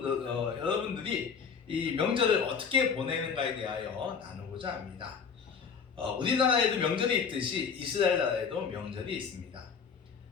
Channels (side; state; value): right; quieter; 6.3 dB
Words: 이 명절을 어떻게 보내는가에 대하여 나누고자 합니다. 우리나라에도 명절이 있듯이 이스라엘 나라에도 명절이 있습니다.